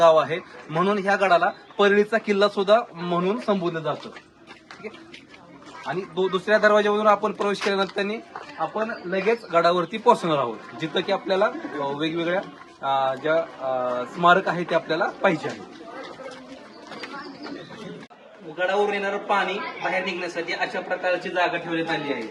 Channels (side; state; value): both; identical; correlation 1.00